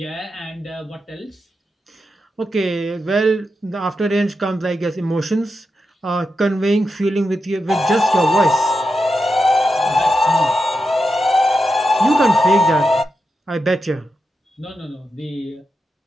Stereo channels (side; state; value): both; normal; correlation 0.88